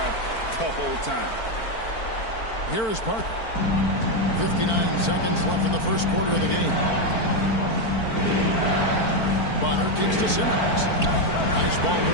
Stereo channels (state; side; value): late; right; 4.5 ms